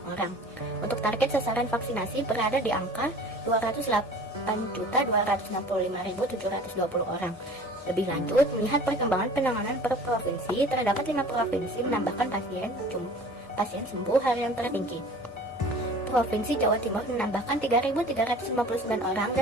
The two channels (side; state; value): left; noise; hum, 29 dB below the sound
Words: orang. Untuk target sasaran vaksinasi berada di angka 208.265.720 orang. Lebih lanjut, melihat perkembangan penanganan per provinsi, terdapat 5 provinsi menambahkan pasien sembuh harian tertinggi. Provinsi Jawa Timur menambahkan 3.359 orang